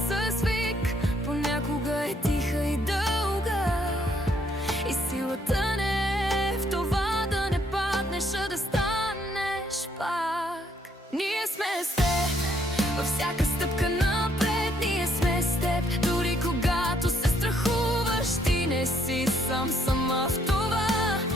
вик, понякога е тиха и дълга, и силата не е в това да не паднеш, а да станеш пак. Ние сме с теб във всяка стъпка напред, ние сме с теб дори когато се страхуваш. Ти не си сама в това,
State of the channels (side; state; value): both; normal; correlation 0.69